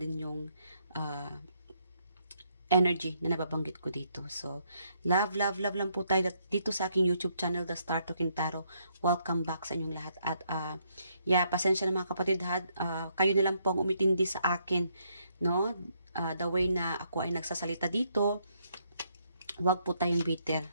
yung energy na nababanggit ko dito. So, love lang po tayo dito sa aking YouTube channel, The Star Talking Tarot. Welcome back sa inyong lahat. At, pasensya na mga kapatid, kayo na lang po ang umitindi sa akin, no? The way na ako ay nagsasalita dito, wag po tayong bitter.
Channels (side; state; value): both; inverted; correlation -0.72